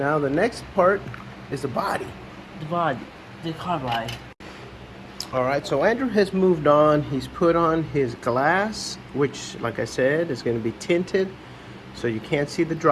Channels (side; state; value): both; identical; correlation 1.00